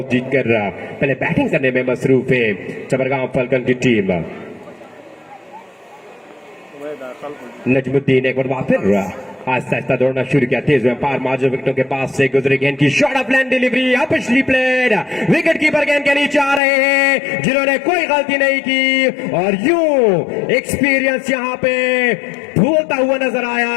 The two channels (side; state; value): right; drops out; at 16.6 s